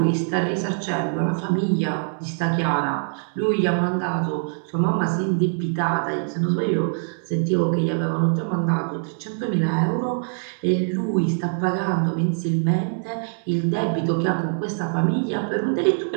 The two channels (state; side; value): silent; left; 63 dB below the other